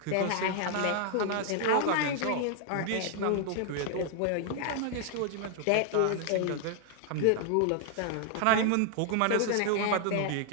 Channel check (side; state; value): both; different; correlation 0.00